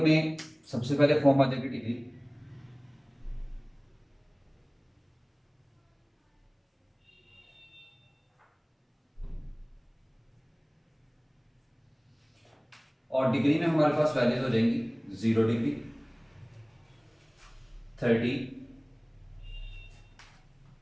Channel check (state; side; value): identical; both; correlation 1.00